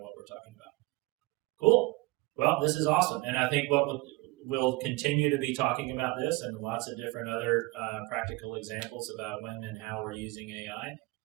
what we're talking about. Cool. Well, this is awesome. And I think we'll continue to be talking about this and lots of different other practical examples about when and how we're using AI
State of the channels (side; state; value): left; quieter; 22.6 dB